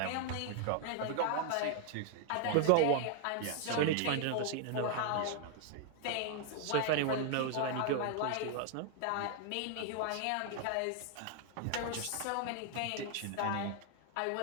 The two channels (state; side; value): different; both; correlation 0.00